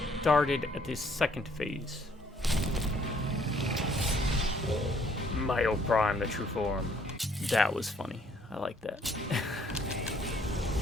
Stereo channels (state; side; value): normal; both; correlation 0.64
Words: at the second phase. Myo Prime, the true form. That was funny. I like that.